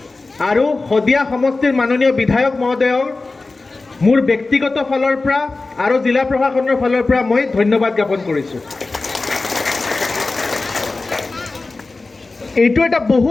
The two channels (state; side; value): quieter; right; 3.5 dB